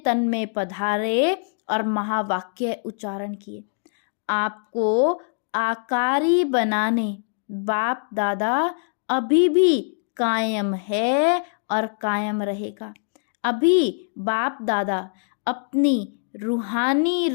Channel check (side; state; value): right; silent; digital silence